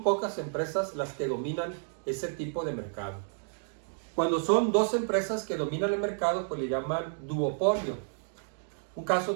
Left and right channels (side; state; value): left; silent; digital silence